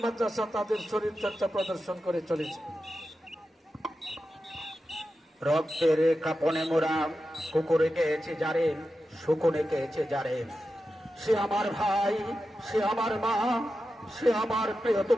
মাদ্রাসা তাদের শরীর চর্চা প্রদর্শন করে চলেছে। রক্তের কাপনে মোরা কুকুরে গেছে যারে, শুকুনে গেছে যারে, সে আমার ভাই, সে আমার মা, সে আমার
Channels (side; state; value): both; normal; correlation 0.91